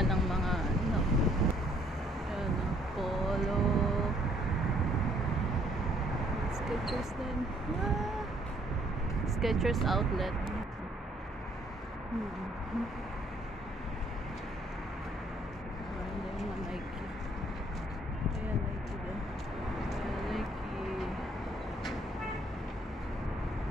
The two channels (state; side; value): normal; both; correlation 0.65